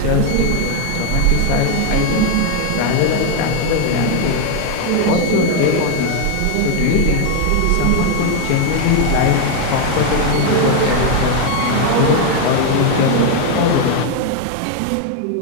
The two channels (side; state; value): both; different; correlation 0.01